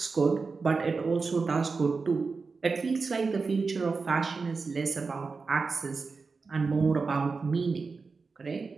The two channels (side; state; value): left; quieter; 4.5 dB